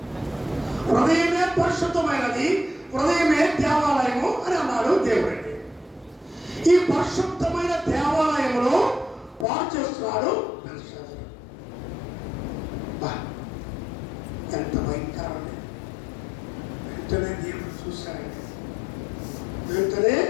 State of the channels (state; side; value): drops out; right; at 9.5 s